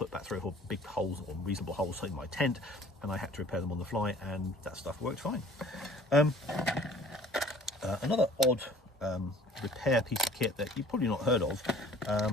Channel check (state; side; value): normal; both; correlation 0.51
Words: back 3 or 4 big holes or reasonable holes in my tent, and I had to repair them on the fly, and that stuff worked fine. Another odd repair piece of kit that you've probably not heard of